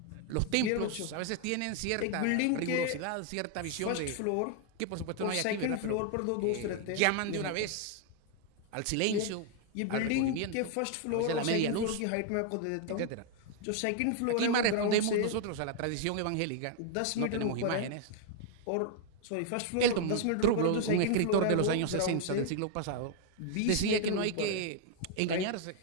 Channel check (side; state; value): both; different; correlation 0.00